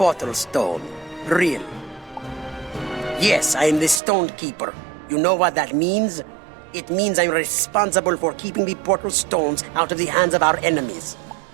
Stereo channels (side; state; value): left; drops out; at 4.0 s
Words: stone. Really? Yes, I am the stone keeper. You know what that means? It means I'm responsible for keeping the portal stones out of the hands of our enemies.